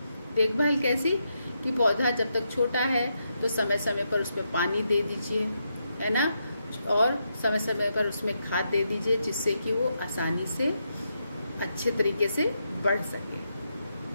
देखभाल कैसी कि पौधा जब तक छोटा है तो समय समय पर उसमें पानी दे दीजिए, है ना, और समय समय पर उसमें खाद दे दीजिए, जिससे कि वो आसानी से अच्छे तरीके से बढ़ सके।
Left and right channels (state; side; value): inverted; both; correlation -0.82